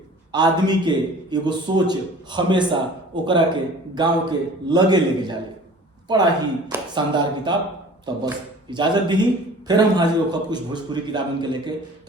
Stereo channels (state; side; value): normal; both; correlation 0.45